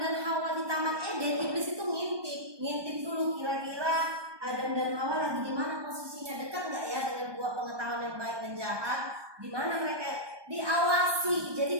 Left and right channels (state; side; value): late; left; 1.2 ms